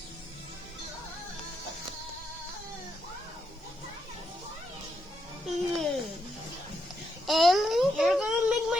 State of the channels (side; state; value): both; normal; correlation 0.80